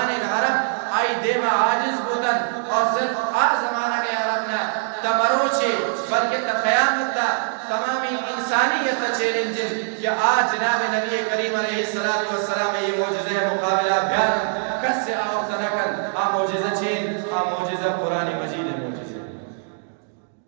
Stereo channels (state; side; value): silent; left; 64 dB below the other